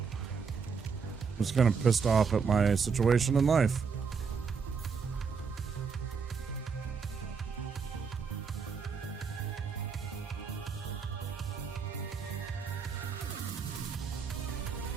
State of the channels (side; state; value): left; quieter; 5.7 dB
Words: just kind of pissed off at my situation in life.